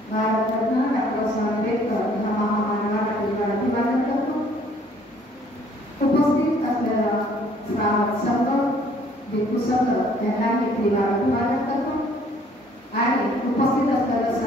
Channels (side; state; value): both; normal; correlation 0.60